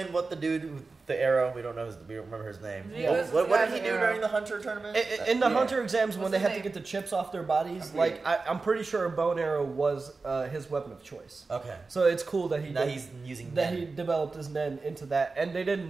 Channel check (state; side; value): quieter; left; 4.0 dB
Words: what the dude with the arrow? We don't know. We don't remember his name. Yeah, What did he do during the Hunter tournament? In the Hunter exams, when they had to get the chips off their bodies, like I'm pretty sure a bow and arrow was his weapon of choice. Okay. So it's cool that he's using that Nen. he developed his Nen into that, and they didn't